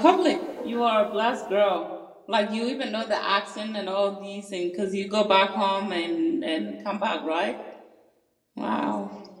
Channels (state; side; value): identical; both; correlation 1.00